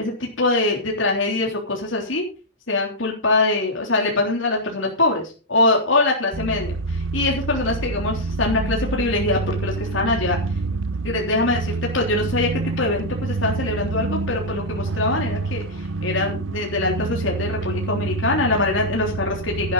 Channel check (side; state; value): both; normal; correlation -0.04